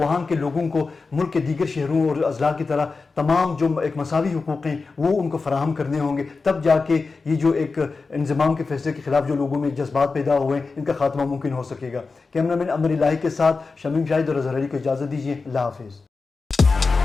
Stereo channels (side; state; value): right; quieter; 4.2 dB